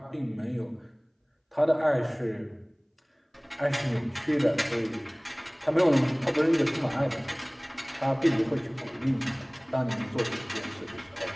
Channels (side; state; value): both; identical; correlation 1.00